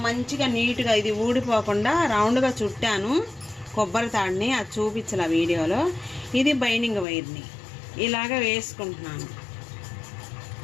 మంచిగా నీట్గా ఇది ఊడిపోకుండా రౌండ్గా చుట్టాను కొబ్బరి తాడుని. అది చూపించాల వీడియోలో. ఇది బైనింగ్ వైర్ని ఇలాగ వేసుకుంటున్నాను.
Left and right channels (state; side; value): drops out; right; at 7.1 s